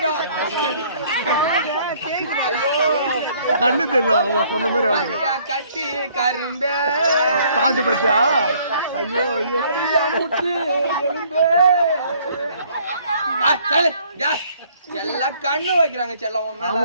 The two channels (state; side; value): inverted; both; correlation -0.61